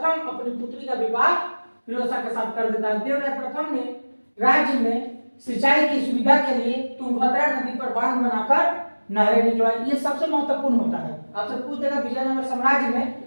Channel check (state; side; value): inverted; both; correlation -1.00